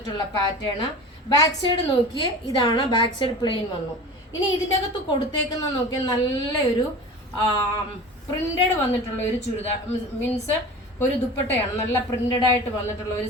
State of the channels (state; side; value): normal; both; correlation 0.36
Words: പാറ്റേൺ. ബാക്ക് സൈഡ് നോക്കിയേ, ഇതാണ് ബാക്ക് സൈഡ് പ്ലെയിൻ വന്നു. ഇനി ഇതിൻ്റെ അകത്ത് കൊടുത്തേക്കുന്ന നോക്കിയാൽ നല്ലൊരു പ്രിന്റഡ് വന്നിട്ടുള്ള ഒരു ചുരിദാർ, മീൻസ് ഒരു ദുപ്പട്ടയാണ്. നല്ല പ്രിന്റഡ് ആയിട്ട് വന്നിട്ടുള്ള ഒരു